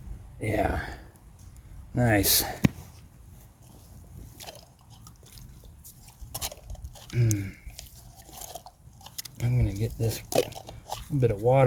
Yeah. Nice. I'm going to get this bit of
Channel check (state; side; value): identical; both; correlation 1.00